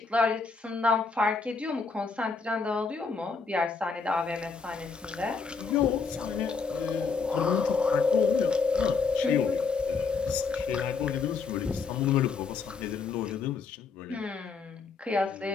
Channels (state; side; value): quieter; right; 4.8 dB